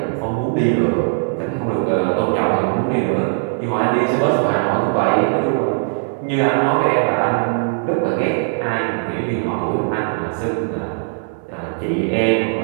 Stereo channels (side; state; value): left; silent; digital silence